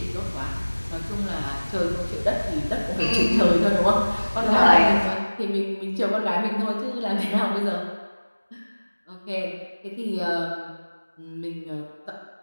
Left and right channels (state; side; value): inverted; both; correlation -1.00